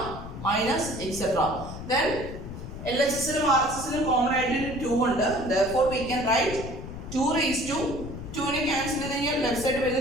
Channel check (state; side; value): noise; left; rumble, 10 dB below the sound